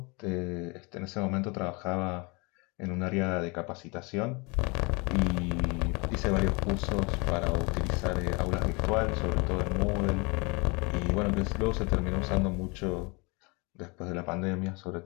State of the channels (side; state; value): right; quieter; 28.7 dB